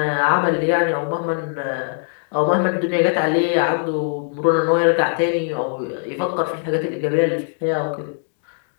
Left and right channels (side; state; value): right; silent; digital silence